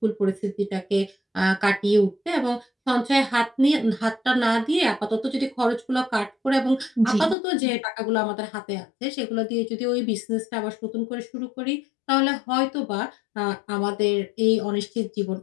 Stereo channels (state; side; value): drops out; right; at 7.4 s